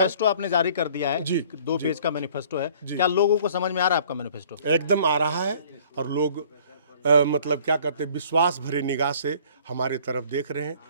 आपने जारी कर दिया है जी, 2 पेज का मैनिफेस्टो है, क्या लोगों को समझ में आ रहा है आपका मैनिफेस्टो? एकदम आ रहा है, और लोग मतलब क्या करते हैं, विश्वास भरे निगाह से हमारे तरफ देख रहे हैं।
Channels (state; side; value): inverted; both; correlation -0.54